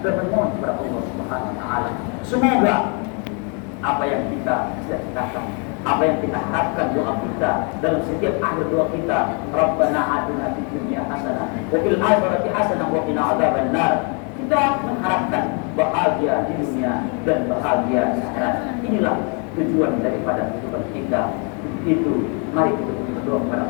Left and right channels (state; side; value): quieter; right; 36.9 dB